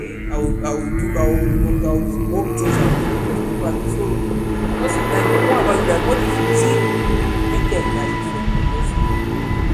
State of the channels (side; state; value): both; identical; correlation 1.00